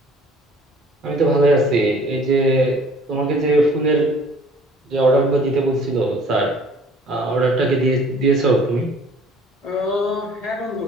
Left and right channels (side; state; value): both; normal; correlation 0.53